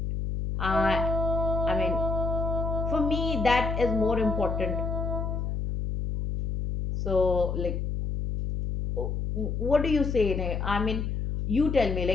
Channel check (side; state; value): left; noise; hum, 2 dB below the sound